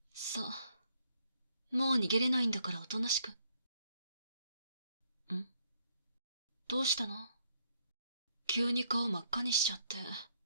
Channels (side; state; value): both; inverted; correlation -0.71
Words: さあ、もう逃げれないんだからおとなしく。ん？どうしたの？急に顔真っ赤にしちゃって。